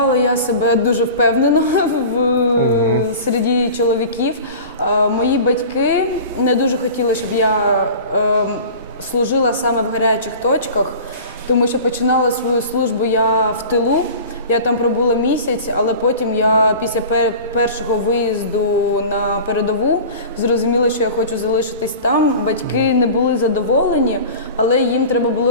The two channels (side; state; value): both; inverted; correlation -0.38